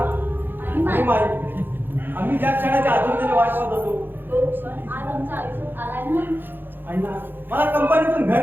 आणि माई. माई आम्ही ज्या क्षणाच्या आतुरतेने वाट पाहत होतो तो क्षण आज आमच्या आयुष्यात आलाय ना. अण्णा मला कंपनीतून घर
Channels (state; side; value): late; left; 0.097 ms